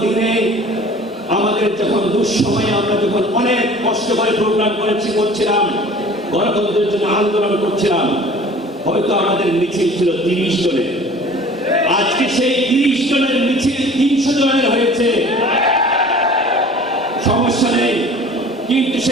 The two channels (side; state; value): both; normal; correlation 0.46